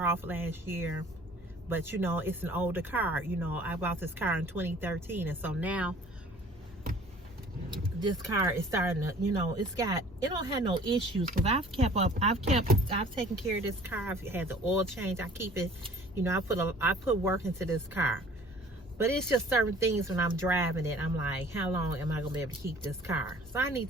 off last year. But, you know, it's an older car. You know, I bought this car in 2013. And so now, this car is starting to, you know, it don't have no issues. Because I've taken care of this car. I've had the oil change. I keep it, you know, I put work into this car. But it's just certain things when I'm driving it, I'm like, how long am I going to be able to keep this car? So I need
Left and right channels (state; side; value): normal; both; correlation 0.51